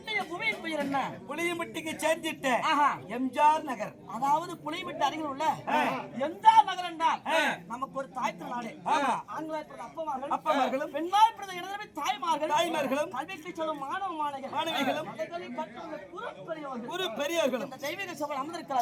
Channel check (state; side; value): identical; both; correlation 1.00